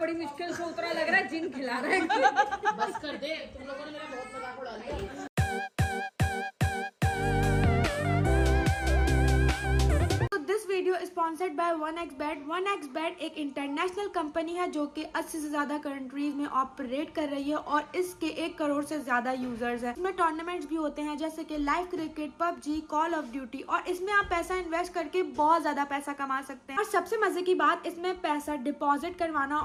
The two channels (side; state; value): both; identical; correlation 1.00